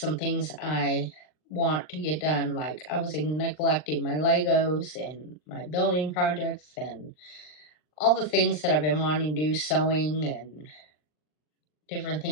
things I want to get done. Like I was neglecting my Legos and my building projects and all the things that I've been wanting to do, sewing and different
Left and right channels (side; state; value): right; late; 39 ms